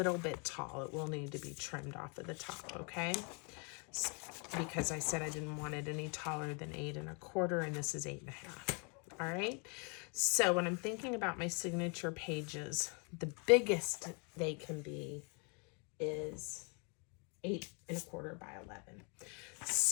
bit tall. It will need to be trimmed off of the top, okay? Because I said I didn't want it any taller than 8 1/4, and this is 8 1/2. All right. So when I'm thinking about my signature pages, the biggest they can be is 8 1/4 by 11.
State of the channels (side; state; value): right; quieter; 34.9 dB